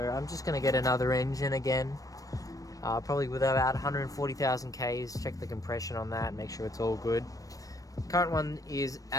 just going to get another engine again, probably with about 140,000 Ks, check the compression on that, make sure it's all good. Current one is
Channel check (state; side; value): late; right; 0.17 ms